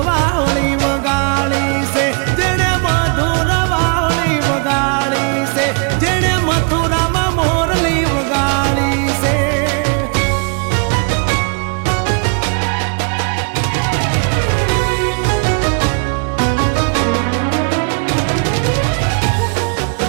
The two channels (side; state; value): left; quieter; 36.0 dB